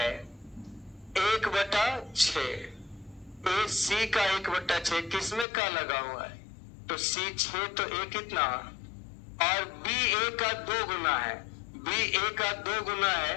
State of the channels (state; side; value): drops out; right; at 5.5 s